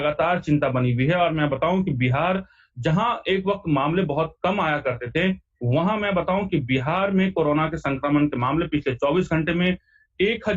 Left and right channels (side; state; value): both; identical; correlation 1.00